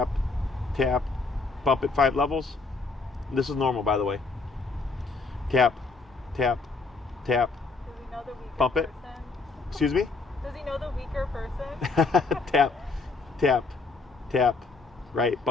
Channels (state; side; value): quieter; right; 4.0 dB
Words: Tap. Bump it 5 levels. This is normal, by the way. Tap. Tap. Tap. Does he know the weaker Bump it. person? Excuse me? Does he know the weaker person? Tap. Tap. Tap. Right.